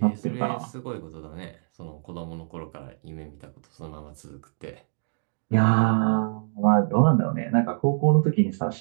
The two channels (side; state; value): left; silent; digital silence